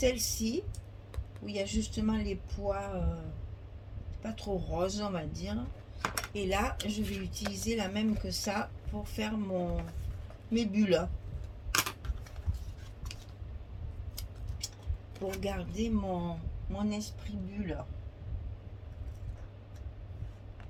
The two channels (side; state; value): both; identical; correlation 1.00